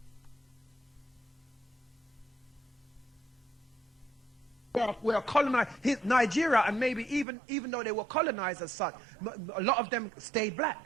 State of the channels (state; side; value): drops out; left; at 7.2 s